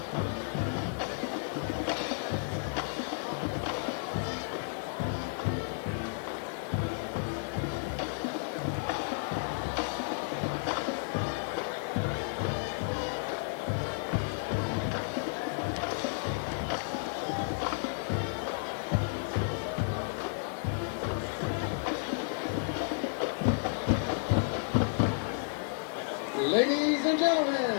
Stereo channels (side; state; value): right; silent; digital silence